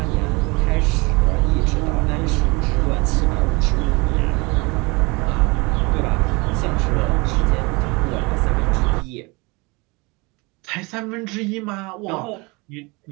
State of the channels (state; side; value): quieter; left; 26.5 dB